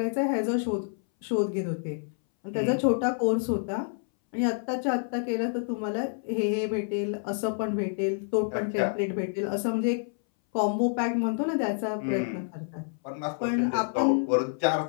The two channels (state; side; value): silent; right; 59 dB below the other